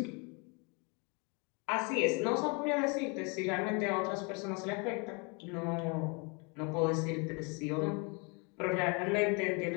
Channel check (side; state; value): right; quieter; 32.5 dB